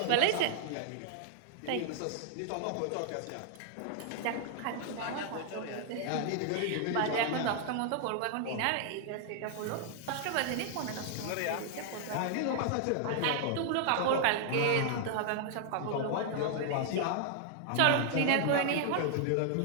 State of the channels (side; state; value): both; different; correlation 0.00